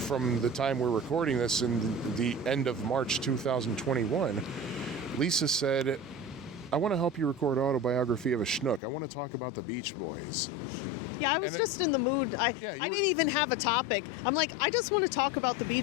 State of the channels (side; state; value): right; drops out; at 8.8 s